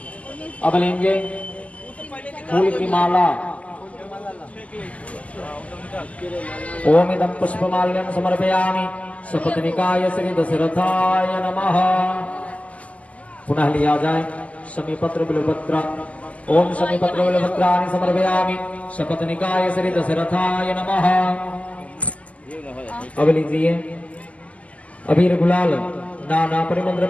अब लेंगे फूल की माला। ओम इदं पुष्पमाल्यं समर्पयामि सपत्निकाय श्री दशरथाय नमः। पुनः लिया जाए शमीपत्र बिल्वपत्र। ओम शमीपत्र बिल्वपत्राणि समर्पयामि सपत्निकाय श्री दशरथाय नमः। अब लीजिए अबीर गुलाल नाना परिमल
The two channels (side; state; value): right; late; 0.069 ms